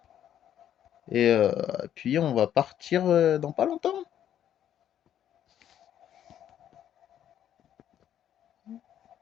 Et puis on va partir dans pas longtemps.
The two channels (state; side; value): quieter; right; 10.5 dB